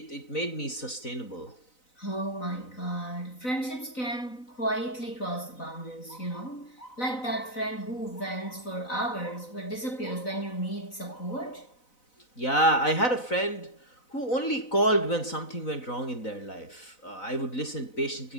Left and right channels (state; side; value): late; right; 4.0 ms